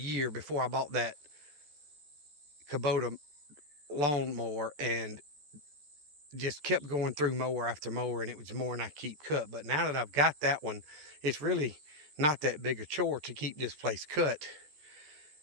before I bought that Kubota lawnmower and just kept going through mower after mower, and it was more than I keep cut. But now that I've got that one, it's really not that big a chore to keep this place cut,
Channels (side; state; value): left; late; 14 ms